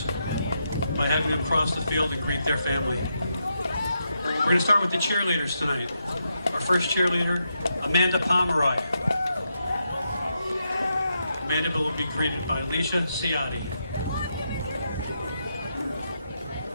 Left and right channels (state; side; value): inverted; both; correlation -0.83